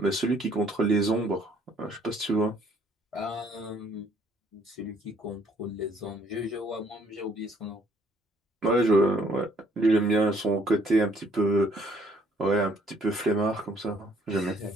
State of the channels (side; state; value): both; normal; correlation 0.64